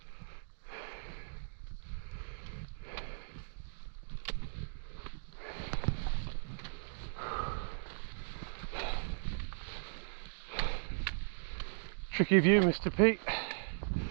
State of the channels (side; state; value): left; silent; digital silence